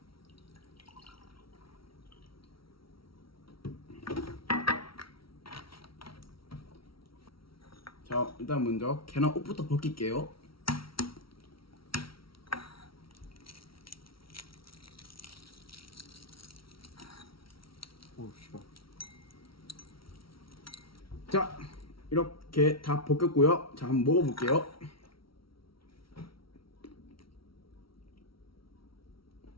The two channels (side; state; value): right; late; 0.75 ms